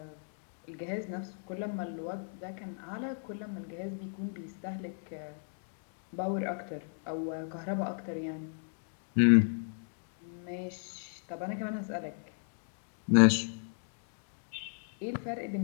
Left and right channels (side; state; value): right; silent; digital silence